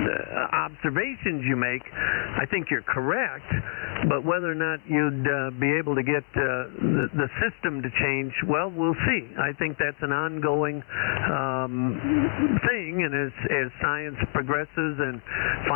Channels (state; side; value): silent; right; 60 dB below the other